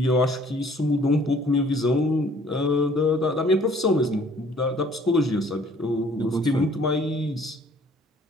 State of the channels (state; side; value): normal; both; correlation 0.57